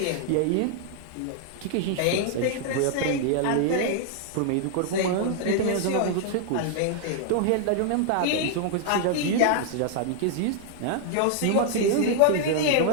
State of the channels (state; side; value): different; both; correlation 0.00